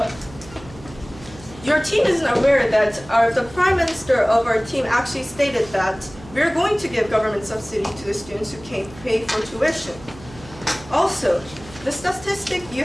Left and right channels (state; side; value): noise; right; hum, 19 dB below the sound